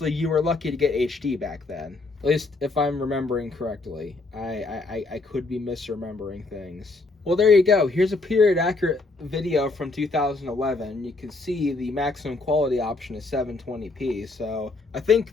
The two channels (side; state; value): right; quieter; 3.4 dB